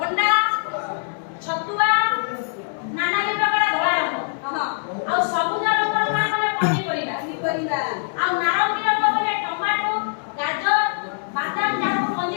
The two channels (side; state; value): right; silent; 64 dB below the other